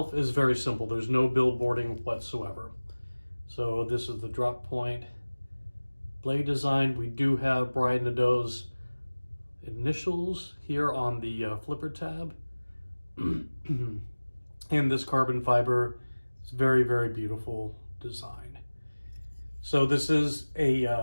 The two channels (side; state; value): both; inverted; correlation -1.00